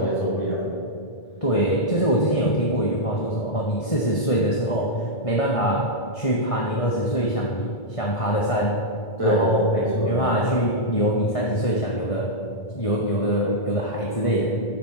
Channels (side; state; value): right; late; 1.7 ms